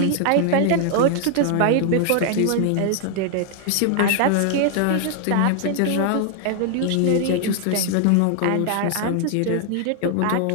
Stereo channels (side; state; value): both; different; correlation 0.00